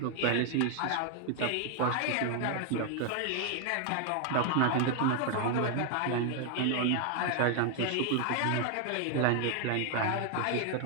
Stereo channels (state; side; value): different; both; correlation 0.00